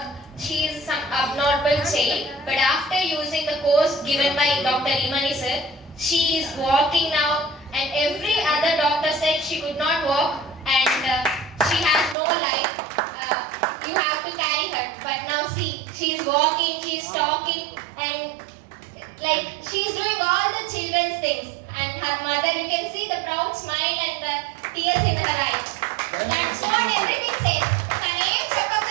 She is some abnormal child, but after using the course given by Dr. Imani sir, she is walking now, and every other doctor said she could not walk and she has no life. You have to carry her, but now see, she is walking, she is talking, and like she is doing all the children's things. And her mother, you can see the proud smile and the tears in her eyes. That's what everything says. తనేం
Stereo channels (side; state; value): left; drops out; at 12.2 s